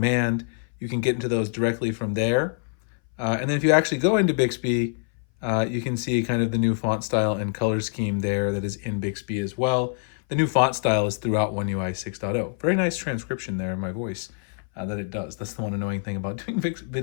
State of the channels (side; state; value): right; silent; 59 dB below the other